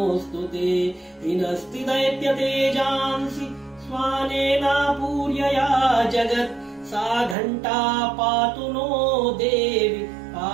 ते हिनस्ति दैत्यतेजांसि स्वानेनापूर्यया जगत् सा घण्टा पातु नो देवि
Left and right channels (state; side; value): drops out; left; at 7.4 s